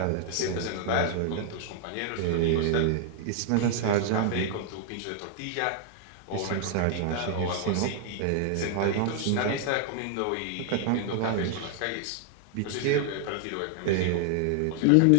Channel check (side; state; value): both; different; correlation 0.00